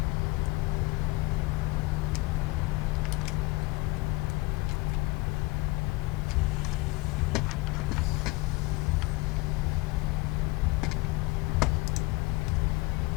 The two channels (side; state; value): right; quieter; 22.6 dB